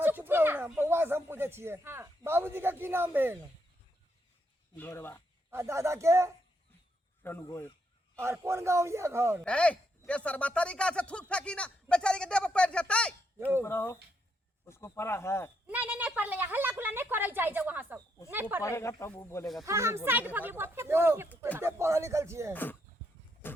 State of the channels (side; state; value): both; normal; correlation 0.77